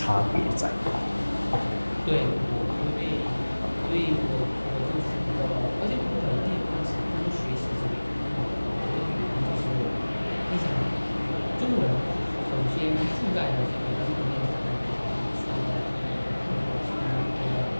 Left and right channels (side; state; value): both; inverted; correlation -1.00